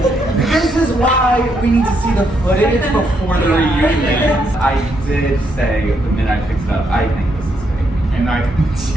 me? This is why we need to see the footage before the reunion. I did say the minute I picked it up, I think this is fake. And I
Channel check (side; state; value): both; normal; correlation 0.77